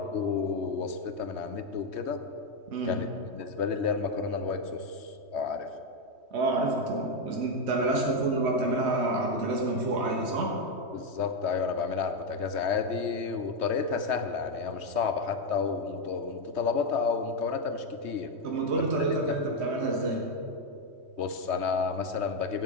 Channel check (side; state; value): left; late; 3.2 ms